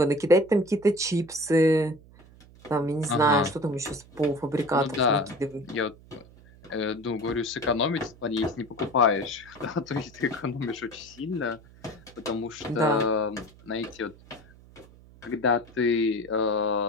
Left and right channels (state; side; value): noise; right; hum, 23 dB below the sound